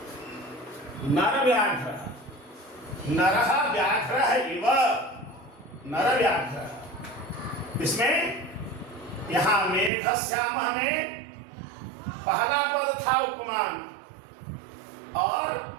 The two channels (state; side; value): drops out; left; at 9.9 s